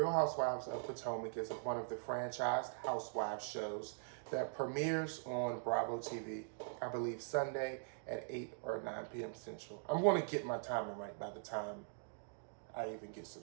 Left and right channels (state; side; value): silent; left; digital silence